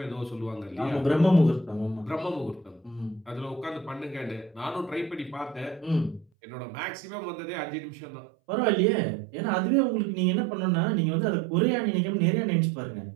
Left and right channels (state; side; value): drops out; left; at 6.2 s